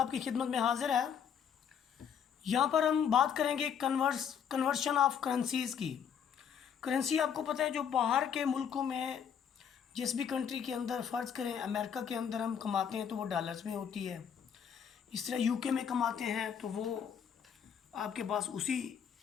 खिदमत में हाजिर है। यहाँ पर हम बात करेंगे कन्वर्शन ऑफ करेंसीज़ की। करेंसी आपको पता है जो बाहर के मुल्कों में जिस भी कंट्री के अंदर फ़र्ज़ करें अमेरिका के अंदर हम कमाते हैं तो वो डॉलर्स में होती है। इस तरह यूके में कमाते हैं तो वो आपके पास उसी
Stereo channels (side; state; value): right; quieter; 7.9 dB